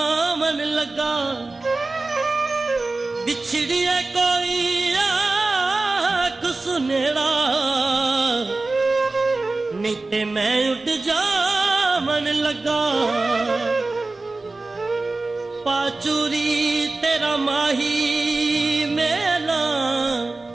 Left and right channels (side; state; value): left; quieter; 3.3 dB